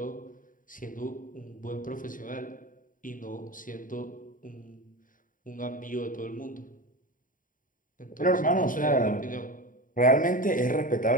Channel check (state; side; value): late; right; 0.39 ms